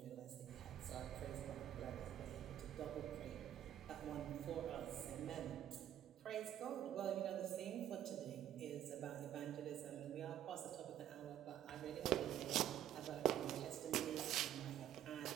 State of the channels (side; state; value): left; quieter; 11.2 dB